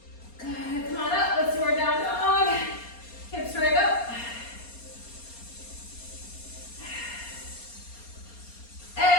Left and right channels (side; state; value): right; late; 4.3 ms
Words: Good. Come on up. Let's do our down dog. Hips right up.